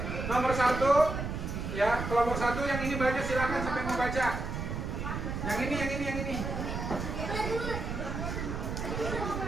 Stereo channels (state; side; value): noise; right; rumble, 4 dB below the sound